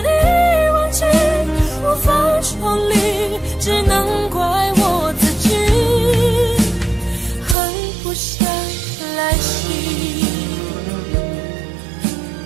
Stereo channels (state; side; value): drops out; left; at 7.6 s